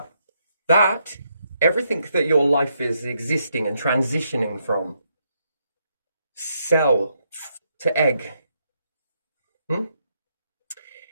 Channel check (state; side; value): inverted; both; correlation -0.78